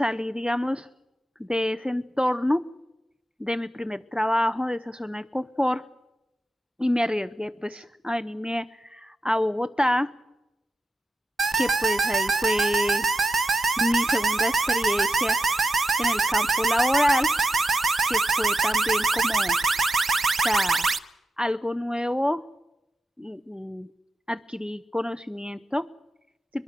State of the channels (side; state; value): both; normal; correlation 0.89